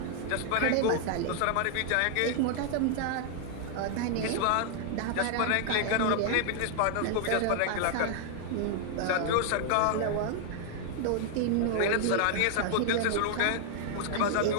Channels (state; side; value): different; both; correlation 0.00